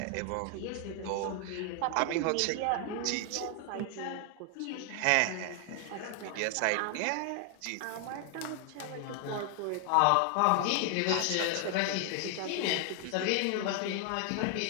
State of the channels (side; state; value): both; different; correlation 0.00